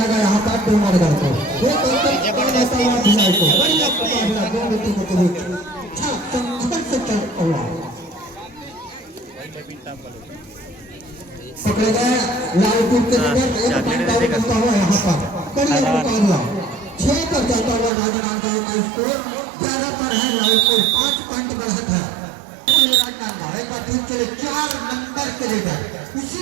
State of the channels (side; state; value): left; drops out; at 17.9 s